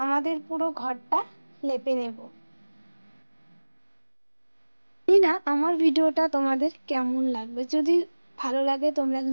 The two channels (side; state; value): both; inverted; correlation -1.00